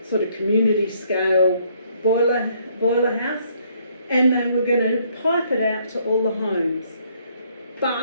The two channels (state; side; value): inverted; both; correlation -0.67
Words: sort of community scale boiler house, and they were going to pipe it out to all the homes.